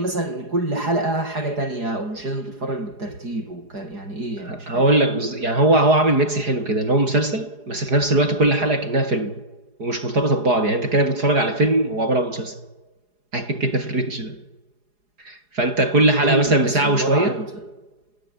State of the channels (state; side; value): late; left; 4.8 ms